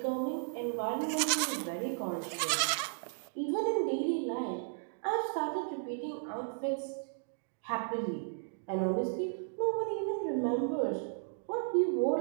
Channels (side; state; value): left; silent; digital silence